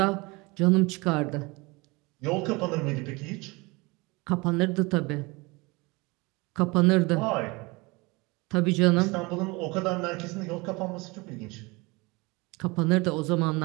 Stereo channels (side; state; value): left; quieter; 25.2 dB